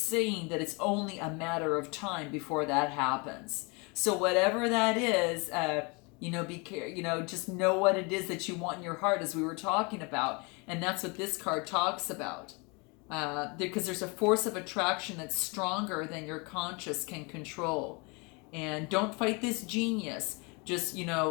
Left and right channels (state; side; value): quieter; right; 29.9 dB